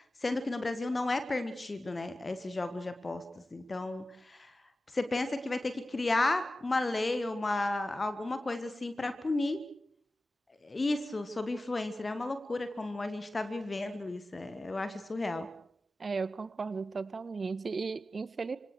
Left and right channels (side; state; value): both; normal; correlation 0.94